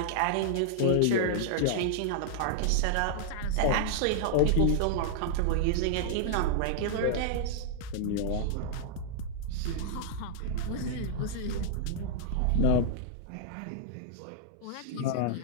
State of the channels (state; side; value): different; both; correlation -0.01